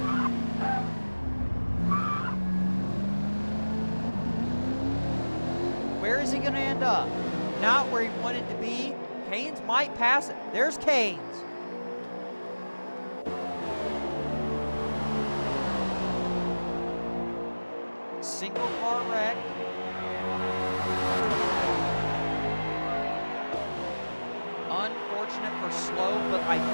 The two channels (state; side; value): inverted; both; correlation -1.00